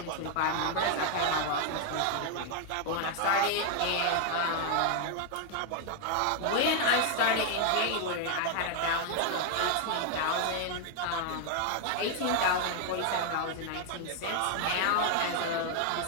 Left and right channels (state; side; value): different; both; correlation 0.00